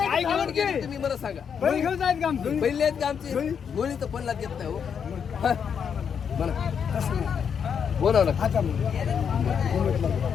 तुम्ही मला सांगा. बैल घेऊन जायचं का आमचं? पहिले आहेत का आमची गोळी तर पणला देत नाही हो. मला बोलावं ना. आता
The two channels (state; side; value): quieter; right; 7.2 dB